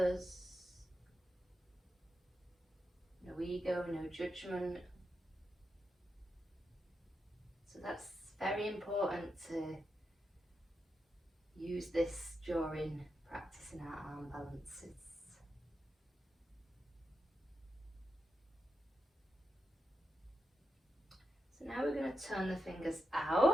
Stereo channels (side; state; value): both; normal; correlation 0.87